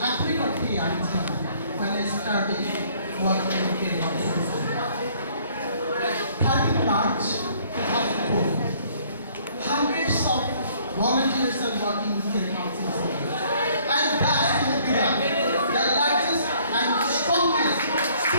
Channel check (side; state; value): both; inverted; correlation -0.60